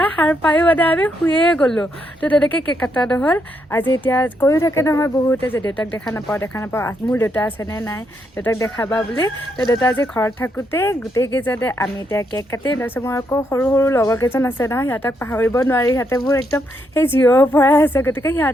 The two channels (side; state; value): both; normal; correlation 0.78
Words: সাৰ পায়ো মানে আমি শুয়ে গ'লোঁ। তো তেনেকৈ কেক কটা নহ'ল। আজি এতিয়া কৈও থাকে নহয় বহুতে যে দেউতাক দেখা নাপাওঁ, মোৰ দেউতা আছেনে নাই, দেউতাক দেখাবা বুলি। তো দেউতা আজি ঘৰত থাকোঁতে গোটেইকেইজনে আমি এতিয়া কেক কাটিম। তাৰপিছত মোৰ আকৌ সৰু সৰু লগৰ কেইজন আছে নহয়, সিহঁতক পাহৰিব নোৱাৰি, সিহঁতে মোৰ একদম সেই জিৰৰ পৰাই আছে। গতিকে